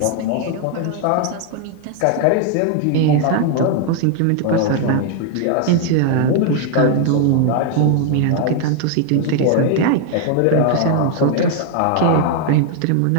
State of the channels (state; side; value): different; both; correlation 0.00